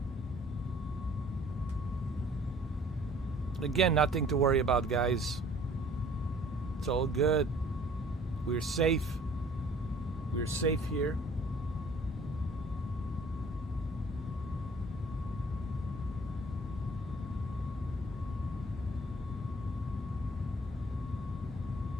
Again, nothing to worry about, guys. It's all good. We're safe. We're safe here.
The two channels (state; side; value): normal; both; correlation 0.54